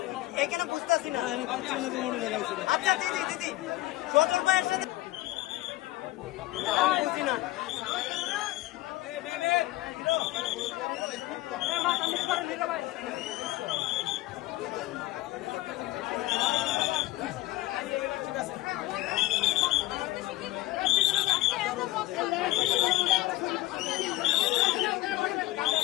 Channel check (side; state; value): right; quieter; 17.5 dB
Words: এখানে বুঝতেছি না। আচ্ছা দিদি দিদি সজল ভাইয়ের সাথে বুঝি না।